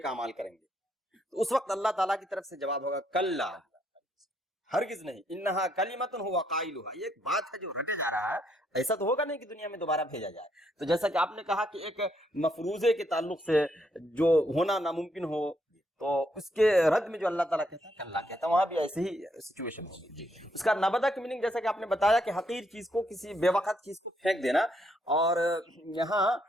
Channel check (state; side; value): normal; both; correlation 0.74